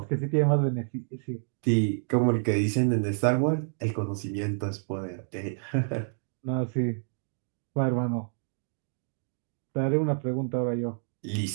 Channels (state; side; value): silent; left; digital silence